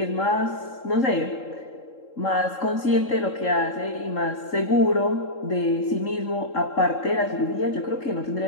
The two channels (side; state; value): right; late; 3.7 ms